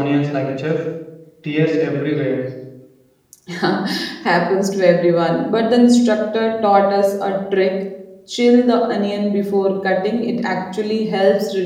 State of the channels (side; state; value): both; identical; correlation 1.00